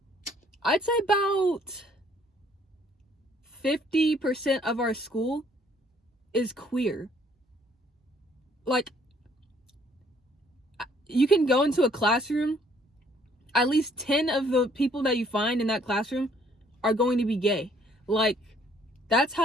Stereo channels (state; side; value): normal; both; correlation 0.62